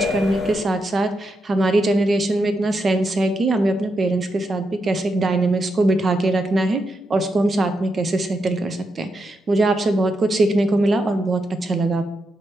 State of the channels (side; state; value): both; normal; correlation 0.84